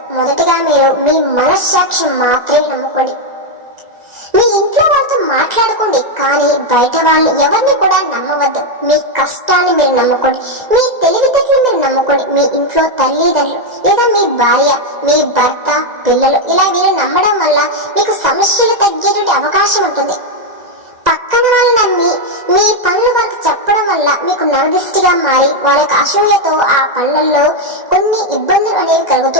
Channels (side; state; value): left; late; 1.9 ms